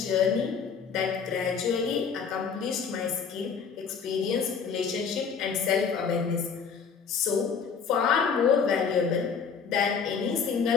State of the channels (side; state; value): right; quieter; 6.2 dB